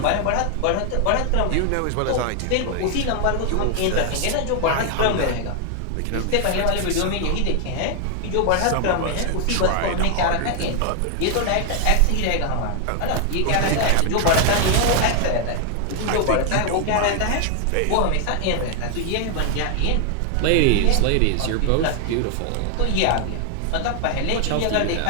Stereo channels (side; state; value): both; different; correlation 0.00